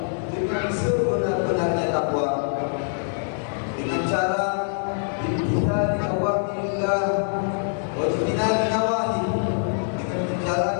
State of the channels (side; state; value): right; silent; digital silence